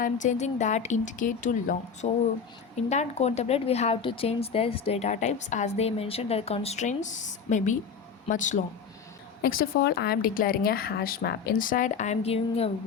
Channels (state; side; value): quieter; right; 6.2 dB